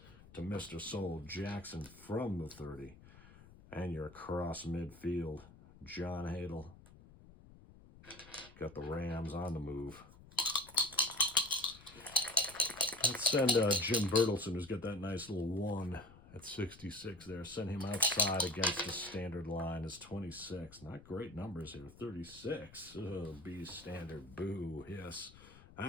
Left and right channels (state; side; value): noise; left; rumble, 21 dB below the sound